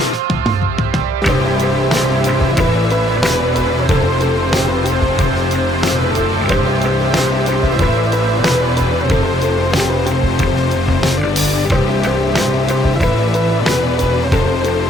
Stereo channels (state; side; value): normal; both; correlation 0.70